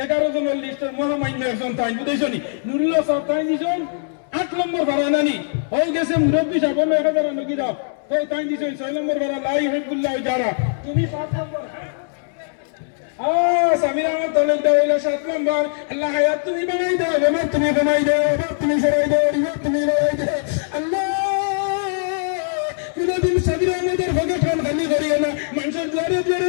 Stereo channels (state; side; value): silent; right; digital silence